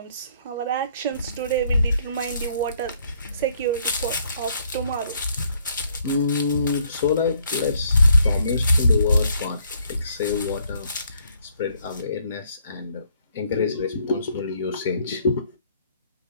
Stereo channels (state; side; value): inverted; both; correlation -0.66